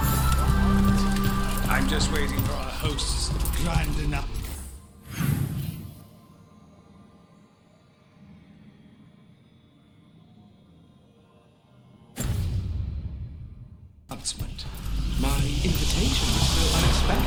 I'm just waiting for our host's grand enough. Announcement. My invitation was so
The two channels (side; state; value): both; identical; correlation 1.00